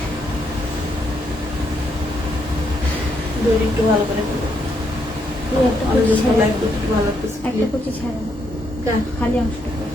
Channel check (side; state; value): both; normal; correlation 0.77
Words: দড়ি একটু ভালো করে ফেলো। এই একটা কুচি একটু ছাড়া, ভালো লাগতেছে। একটা কুচি ছাড়া, খালি অংশটা